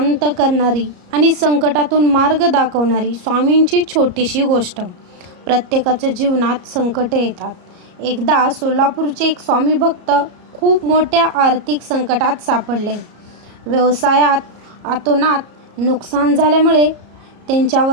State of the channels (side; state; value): left; late; 34 ms